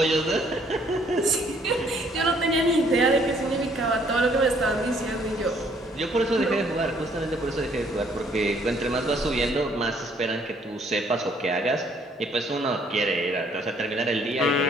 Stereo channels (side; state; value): both; normal; correlation 0.64